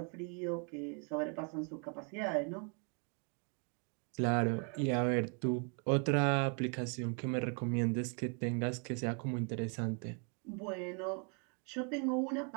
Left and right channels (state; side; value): quieter; left; 39.1 dB